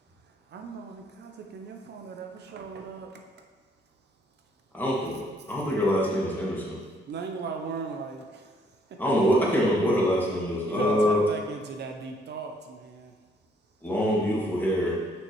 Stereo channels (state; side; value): normal; both; correlation 0.66